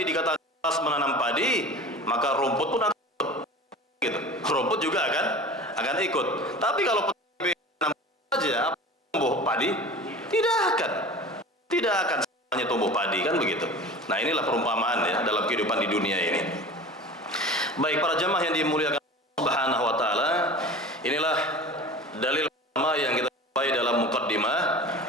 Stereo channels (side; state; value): both; normal; correlation 0.37